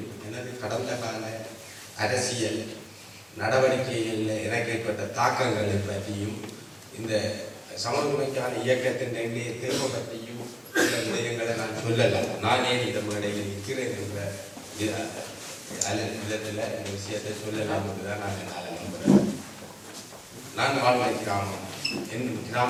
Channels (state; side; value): identical; both; correlation 1.00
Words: எனது கடந்த கால அரசியல் நடவடிக்கைகளில் எனக்கு ஏற்பட்ட தாக்கங்களை பற்றியும் இந்த சமூகமைக்கான இயக்கத்தின் தேவை பற்றியும் சில விடயங்களை நான் சொல்லலாம். நானே இந்த மேடையில் நிற்கிறேன் என்ற விதத்தில் இந்த விஷயத்தை சொல்லலாம் என்றுதான் நான் நம்புகிறேன். நான் வாழ்ந்த கிராமம், என்